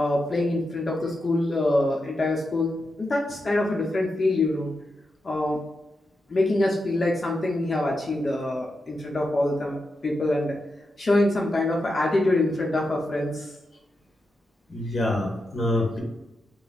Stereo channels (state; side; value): normal; both; correlation 0.87